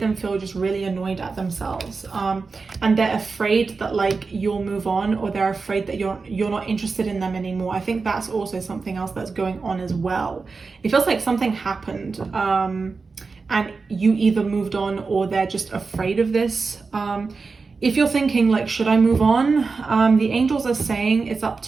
them feel just really annoyed at themselves, and they're afraid that like you'll move on, or they're afraid that you're not interested in them anymore. I think that's also something else that's going on as well. It feels like something happened, and you either moved on or they're just afraid of this. If you're thinking like, should I move on? The angels are saying it's up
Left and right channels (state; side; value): quieter; left; 4.4 dB